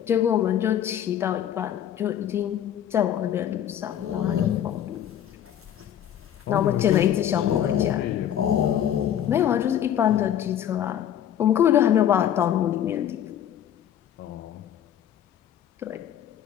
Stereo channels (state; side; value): quieter; right; 10.2 dB